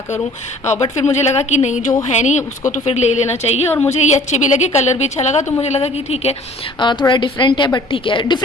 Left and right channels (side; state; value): both; normal; correlation 0.51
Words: करूं। बट फिर मुझे लगा कि नहीं, जो है नहीं उसको तो फिर ले लेना चाहिए। और मुझे ये अच्छे भी लगे, कलर भी अच्छा लगा, तो मुझे लगा कि ठीक है, थोड़ा डिफरेंट है, बट ठीक है।